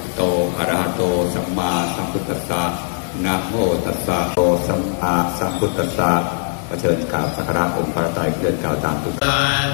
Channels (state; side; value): silent; right; 58 dB below the other